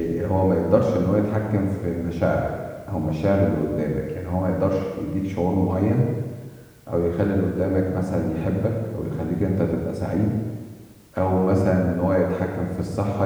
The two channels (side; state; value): both; identical; correlation 1.00